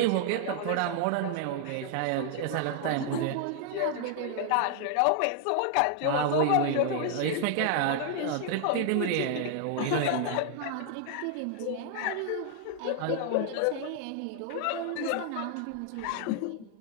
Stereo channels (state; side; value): different; both; correlation 0.00